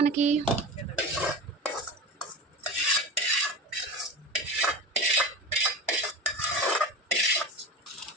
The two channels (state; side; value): normal; both; correlation 0.28